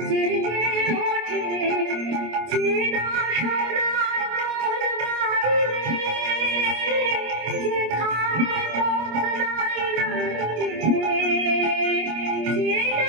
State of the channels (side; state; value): left; late; 25 ms